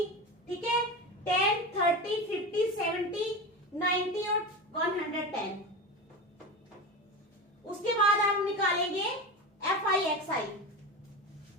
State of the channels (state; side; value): normal; both; correlation 0.24